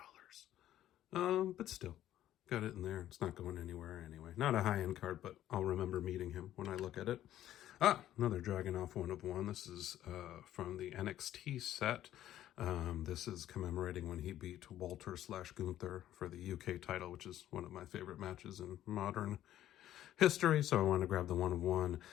But still, got it in there. It's not going anywhere anyway. Not a high-end card, but I'll remember meeting him when I look at it. Another Dragunov 1 of 1. This is from the NXT set. This is commemorating when he beat Walter/Gunther for the UK title, which is one of my favorite matches in modern history. So I want to grab the 1 of 1.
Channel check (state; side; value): quieter; right; 12.6 dB